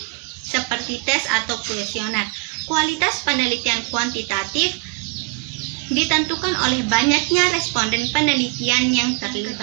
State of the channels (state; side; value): quieter; left; 28.7 dB